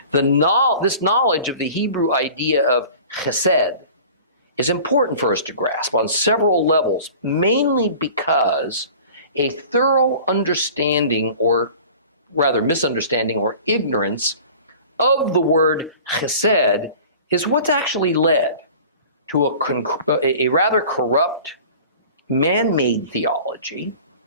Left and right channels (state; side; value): inverted; both; correlation -0.43